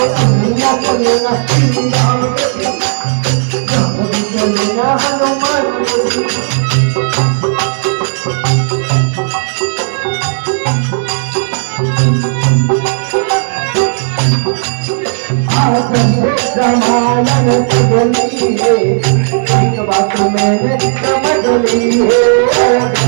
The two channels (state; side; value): silent; left; digital silence